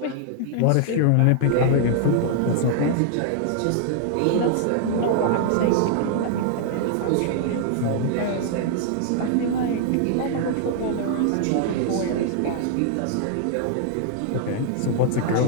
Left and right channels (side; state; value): both; different; correlation 0.00